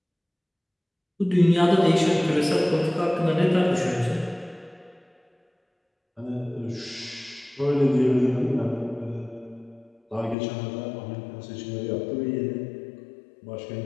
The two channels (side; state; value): right; drops out; at 10.4 s